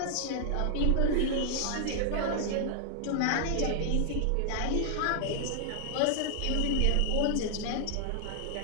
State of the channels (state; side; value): different; both; correlation -0.01